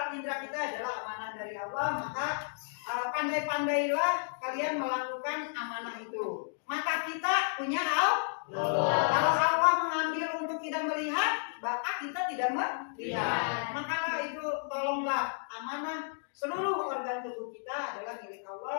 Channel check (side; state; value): right; silent; digital silence